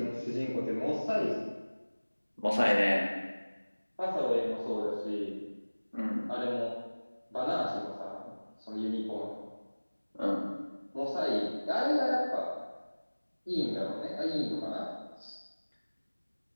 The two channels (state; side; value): inverted; both; correlation -1.00